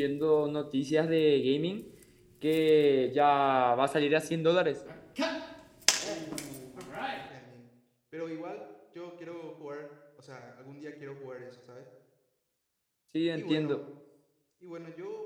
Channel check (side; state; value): both; identical; correlation 1.00